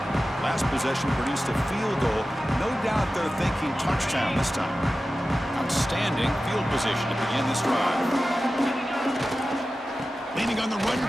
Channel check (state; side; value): normal; both; correlation 0.94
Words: Last possession produced a field goal. No doubt they're thinking touchdown this time. Outstanding field position to begin this drive. Leaning on the run